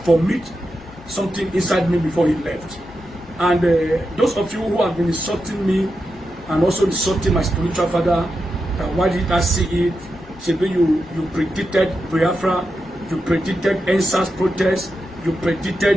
formit something inside me before he left. And those of you who have been insulting me and also insulting my spiritual father, why did I see it? Maybe you predicted Biafra, you predicted NSAS protest, you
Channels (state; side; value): normal; both; correlation 0.88